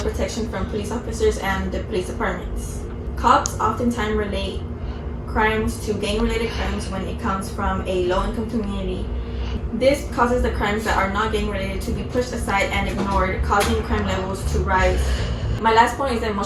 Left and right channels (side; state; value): both; identical; correlation 1.00